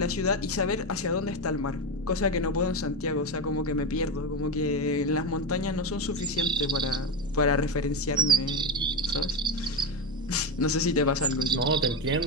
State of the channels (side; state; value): left; noise; hum, 20 dB below the sound